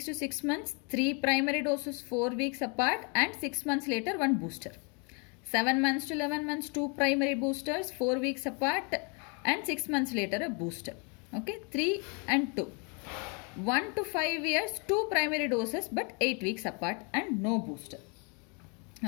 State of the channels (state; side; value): quieter; right; 34.6 dB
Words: to 6 months, 3 primary doses 4 weeks apart, and 6 months later 1 booster. 7 months to 11 months, 2 primary boosters 4 weeks apart, and 6 months later a booster. Okay, 3 and 2. 1 to 5 years, 2 primary doses but 8 weeks apart and no booster.